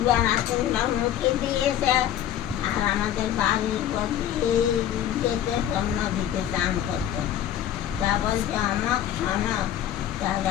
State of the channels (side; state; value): right; quieter; 11.1 dB